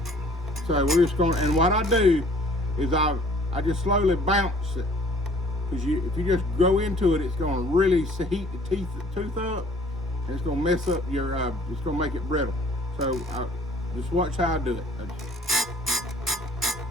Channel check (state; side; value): normal; both; correlation 0.54